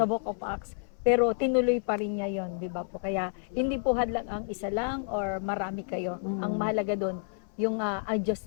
Book of Acts. Pero tinuloy pa rin niya 'yon, 'di ba po? Kaya hindi po hadlang ang isa lang or marami kayo. Ang mahalaga doon yung ang Diyos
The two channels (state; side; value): silent; right; 55 dB below the other